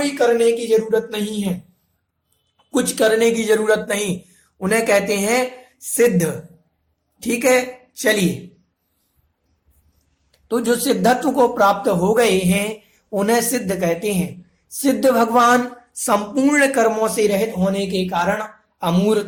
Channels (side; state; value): both; identical; correlation 1.00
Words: करने की जरूरत नहीं है, कुछ करने की जरूरत नहीं, उन्हें कहते हैं सिद्ध। ठीक है, चलिए, तो जो सिद्धत्व को प्राप्त हो गए हैं उन्हें सिद्ध कहते हैं। सिद्ध भगवान संपूर्ण कर्मों से रहित होने के कारण